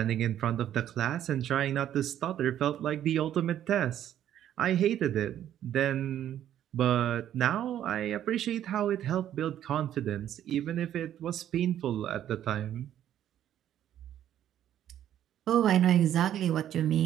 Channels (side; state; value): left; quieter; 11.1 dB